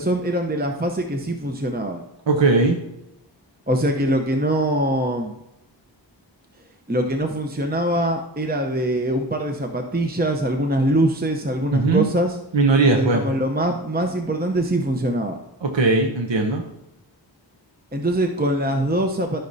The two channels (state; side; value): normal; both; correlation 0.30